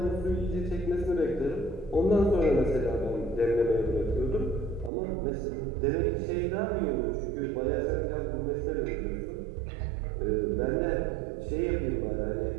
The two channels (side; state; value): left; drops out; at 4.9 s